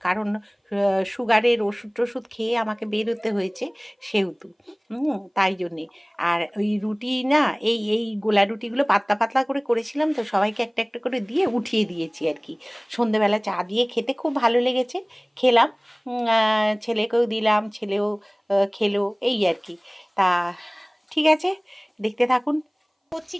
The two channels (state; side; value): identical; both; correlation 1.00